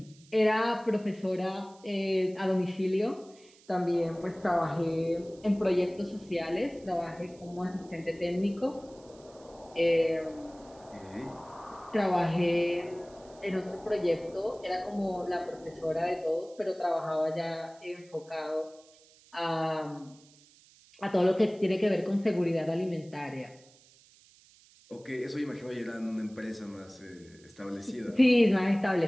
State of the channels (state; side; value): noise; right; hiss, 27 dB below the sound